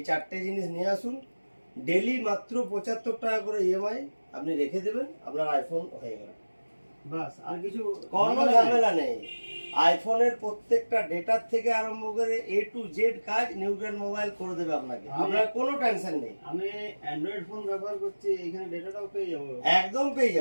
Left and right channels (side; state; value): both; inverted; correlation -1.00